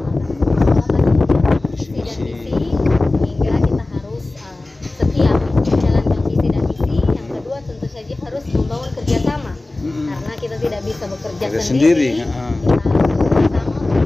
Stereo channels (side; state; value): right; quieter; 3.1 dB